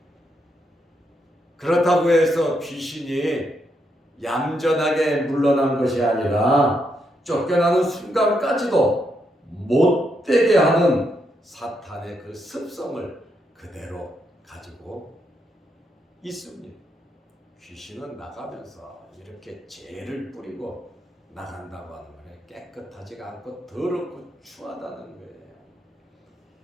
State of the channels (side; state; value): both; normal; correlation 0.79